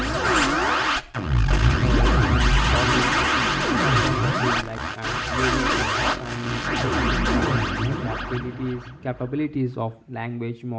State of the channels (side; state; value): both; identical; correlation 1.00